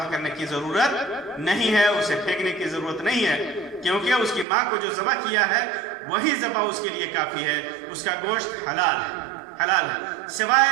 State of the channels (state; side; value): drops out; left; at 4.5 s